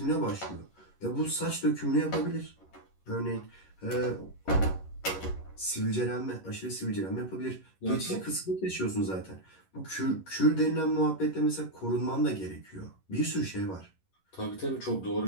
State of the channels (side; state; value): right; late; 11 ms